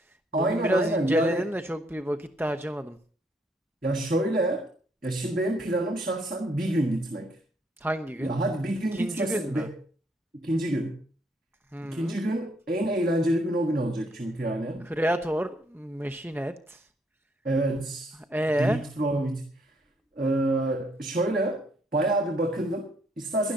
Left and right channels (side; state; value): both; normal; correlation 0.70